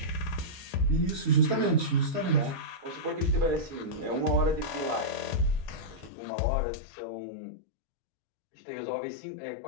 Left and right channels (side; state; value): right; drops out; at 6.1 s